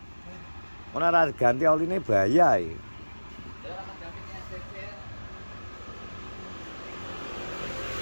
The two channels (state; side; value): inverted; both; correlation -1.00